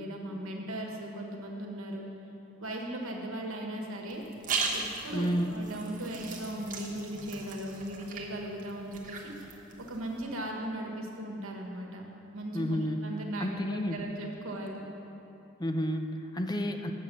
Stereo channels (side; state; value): both; normal; correlation 0.59